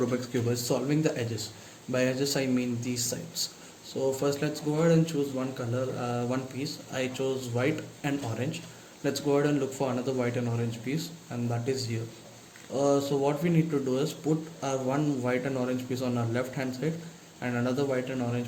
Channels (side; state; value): both; identical; correlation 1.00